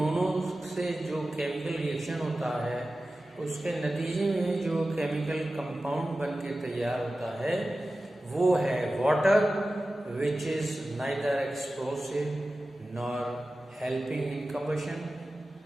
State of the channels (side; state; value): both; normal; correlation 0.95